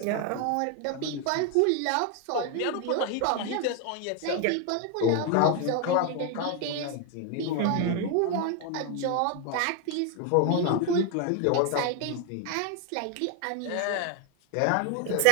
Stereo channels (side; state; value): both; different; correlation 0.01